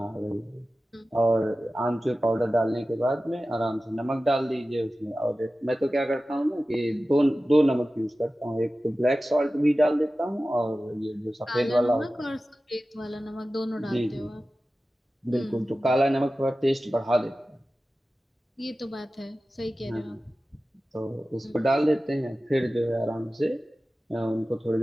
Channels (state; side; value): normal; both; correlation 0.95